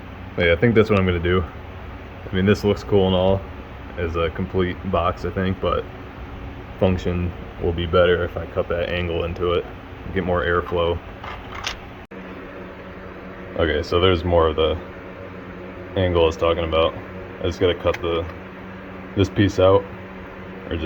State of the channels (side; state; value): both; identical; correlation 1.00